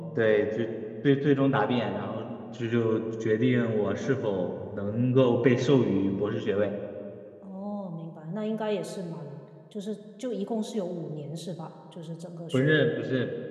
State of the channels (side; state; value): both; identical; correlation 1.00